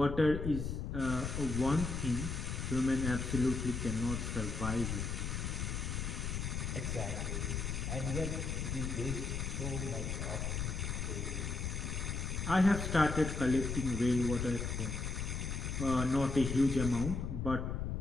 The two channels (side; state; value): left; noise; rumble, 2 dB below the sound